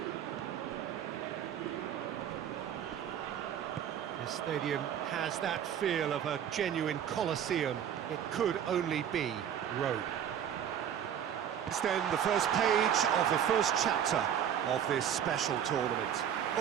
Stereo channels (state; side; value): quieter; left; 9.3 dB